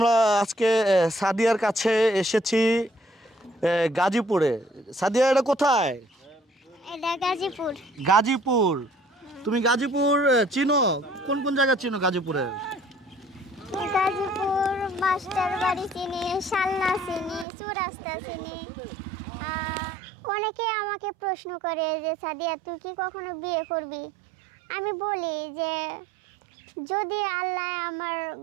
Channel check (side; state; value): left; drops out; at 17.4 s